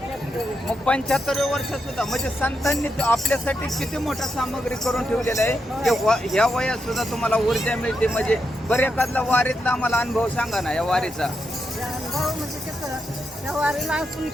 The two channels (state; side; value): normal; both; correlation 0.84